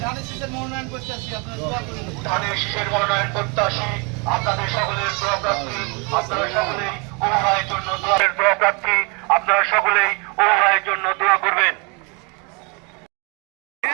ধানের শীষের মনোনয়ন প্রত্যাশী আপনাদের সকলের দোয়া প্রার্থী আপনারা সকলেই উপভাষের জন্য দোয়া প্রার্থী আপনারা সকলেই উপভাষের জন্য দোয়া করবেন।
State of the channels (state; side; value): quieter; left; 31.4 dB